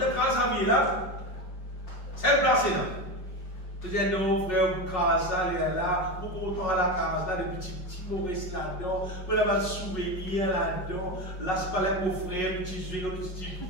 as une case à vie là, c'est placé là. Tu dis non, frère, vous crasez ça, là, vous content à la case là, des petits mauvais là-dedans, vous avez un souvenir là-dedans, là, c'est pas là mon frère, petit jeu,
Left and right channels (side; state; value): right; late; 5.4 ms